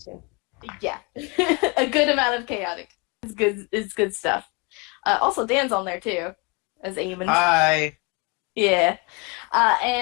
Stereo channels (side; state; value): right; quieter; 29.0 dB